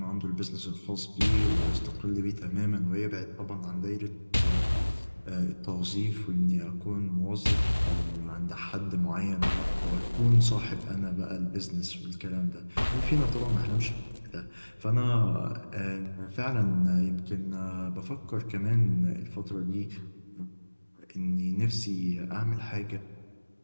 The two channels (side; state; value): both; inverted; correlation -1.00